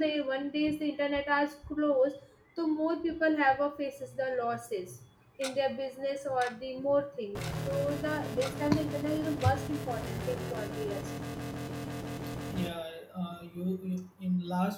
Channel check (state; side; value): identical; both; correlation 1.00